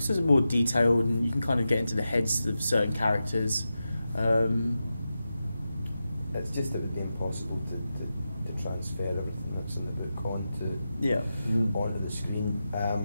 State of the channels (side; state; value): both; inverted; correlation -0.91